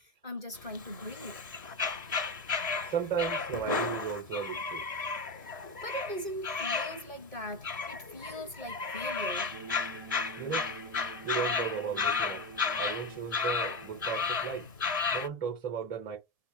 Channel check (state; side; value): late; left; 1.7 ms